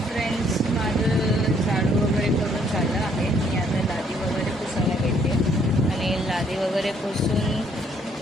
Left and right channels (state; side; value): normal; both; correlation 0.66